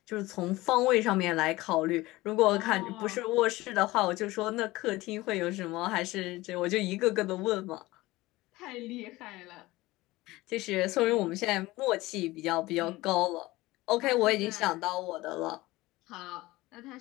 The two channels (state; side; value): quieter; right; 19.3 dB